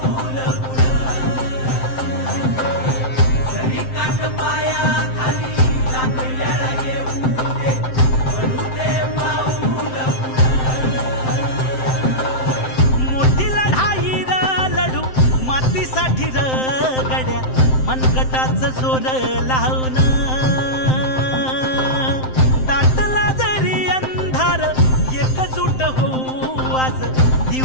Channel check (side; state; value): right; late; 7.7 ms